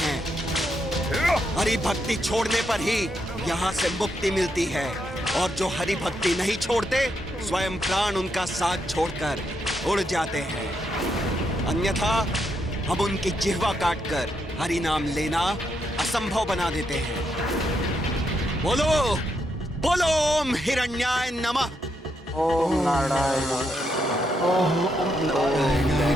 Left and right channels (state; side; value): normal; both; correlation 0.80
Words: हरि भक्ति छोड़ने पर ही यहाँ से मुक्ति मिलती है, और जो हरि भक्ति नहीं छोड़ते स्वयं प्राण उनका साथ छोड़कर उड़ जाते हैं। अन्यथा हम उनकी जिह्वा काटकर हरि नाम लेना असंभव बना देते हैं। बोलो बोलो ओम हिरण्याय नमः। ओम नारायण, ओम नारायण,